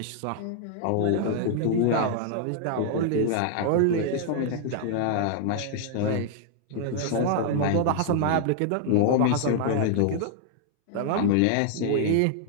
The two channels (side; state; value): both; different; correlation 0.00